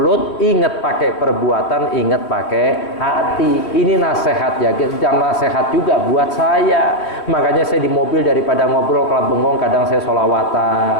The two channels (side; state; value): right; late; 3.2 ms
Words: ingat pakai perbuatan, ingat pakai hati. Ini nasihat ya, jangan nasihat juga buat saya. Makanya saya di mobil daripada ngobrol kalau bengong, kadang saya